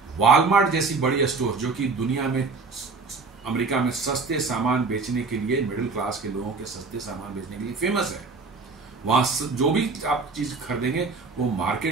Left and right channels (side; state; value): left; quieter; 4.2 dB